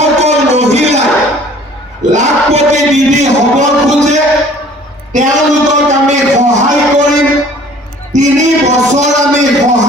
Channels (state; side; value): normal; both; correlation 0.52